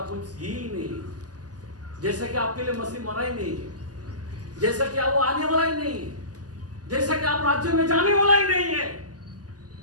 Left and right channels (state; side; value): late; left; 0.68 ms